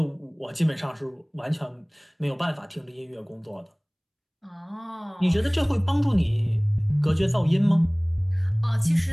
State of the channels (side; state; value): both; identical; correlation 1.00